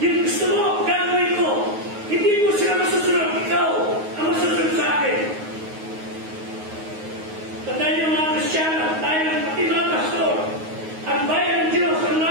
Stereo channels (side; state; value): left; late; 9.5 ms